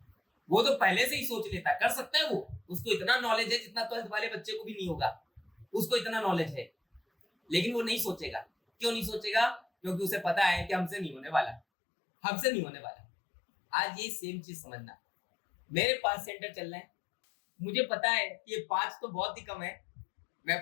वो तो पहले से ही सोच लेता है, कर सकता है वो, उसको इतना नॉलेज है जितना 12th वाले बच्चे को भी नहीं होगा, उसको इतना नॉलेज है, लेकिन वो नहीं सोचेगा। क्यों नहीं सोचेगा? क्योंकि उसे पता है कि हमसे नहीं होने वाला, हमसे नहीं होने वाला। आज ये सेम चीज समझना, मेरे 5 सेंटर चल रहे हैं, मुझे पता है कि ये 5 तो बहुत ही कम है, मैं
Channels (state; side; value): drops out; right; at 11.6 s